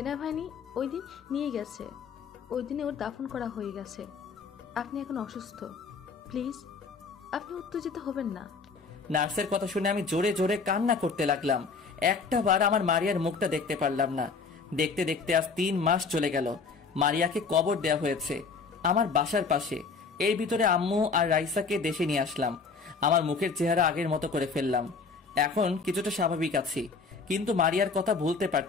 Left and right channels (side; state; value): right; quieter; 4.8 dB